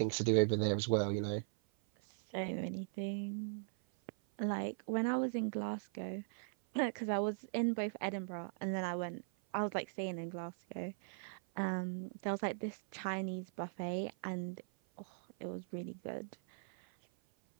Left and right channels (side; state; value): left; silent; 51 dB below the other